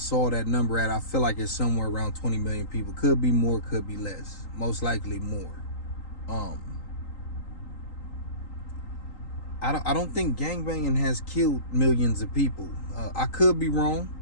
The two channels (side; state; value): right; late; 3.8 ms